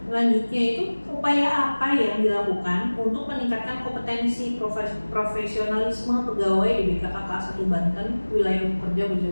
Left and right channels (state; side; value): inverted; both; correlation -1.00